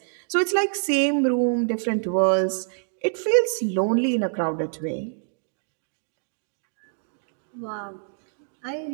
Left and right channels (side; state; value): left; silent; digital silence